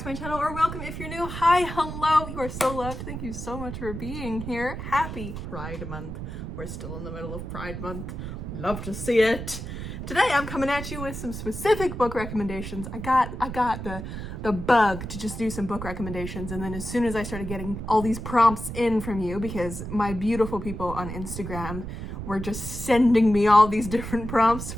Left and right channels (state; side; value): noise; right; rumble, 7 dB below the sound